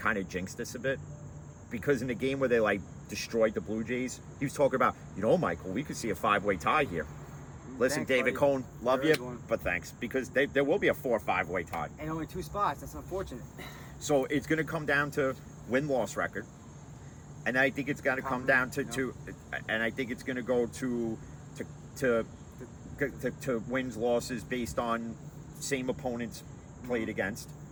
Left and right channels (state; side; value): identical; both; correlation 1.00